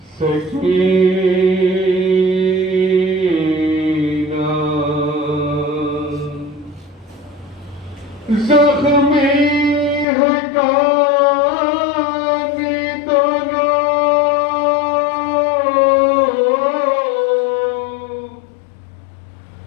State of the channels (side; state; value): right; drops out; at 10.1 s